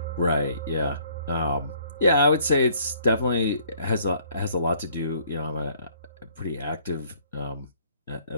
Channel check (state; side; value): inverted; both; correlation -0.61